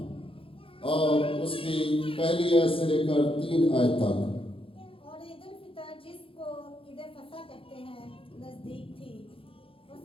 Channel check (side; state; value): right; late; 0.26 ms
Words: اور اس کی پہلی آیت سے لے کر 3 آیت تک۔ اور عید الفطر، جس کو عید فصح کہتے ہیں، نزدیک تھی۔ وہ